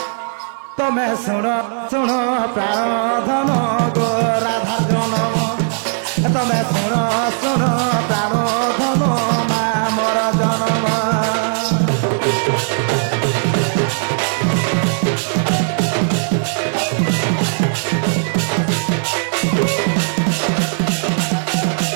তুমি শুণ শুণ প্রাণ ধন গো রাধা জনম তুমি শুণ শুণ প্রাণ ধন মা মোর জনম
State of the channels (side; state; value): left; silent; digital silence